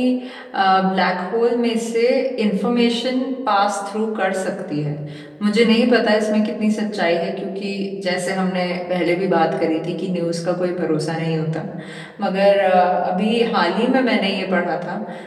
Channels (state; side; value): identical; both; correlation 1.00